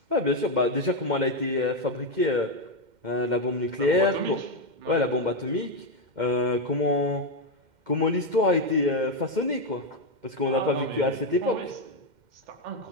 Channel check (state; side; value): late; left; 2.1 ms